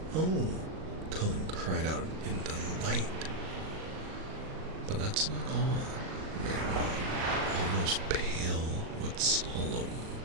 Oh, Cullen cried out in delight. But that's not all, Mary, almost pale with solemn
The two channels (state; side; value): late; left; 38 ms